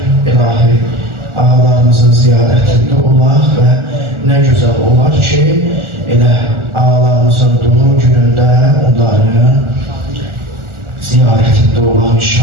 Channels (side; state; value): left; late; 1.4 ms